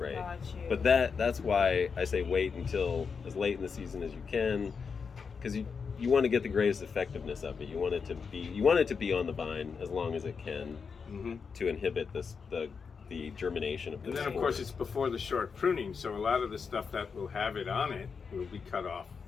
Got you. But that's why I say wait until as late in the season as you can, because you want to get the greatest effectiveness of it. You want it to be on the vine as long as it can Mm-hmm. to inhibit the germination of the And then, of spores. course, it's before the short pruning, so a lot of the stuff that will have it on it will be cut off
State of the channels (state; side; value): quieter; right; 5.6 dB